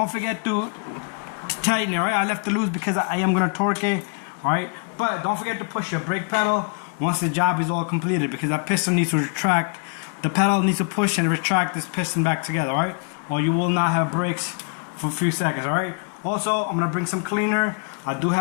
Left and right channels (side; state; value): right; quieter; 38.6 dB